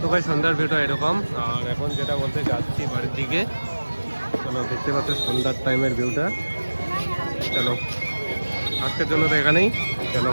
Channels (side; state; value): both; inverted; correlation -1.00